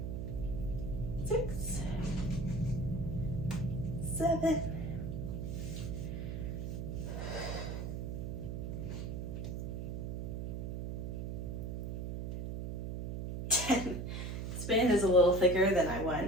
Six, 7, 10. This band is a little thicker than I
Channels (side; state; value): right; noise; hum, 4 dB below the sound